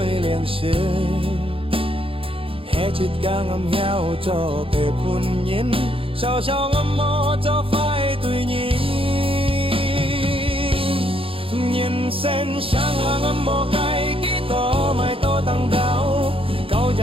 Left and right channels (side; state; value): left; late; 0.27 ms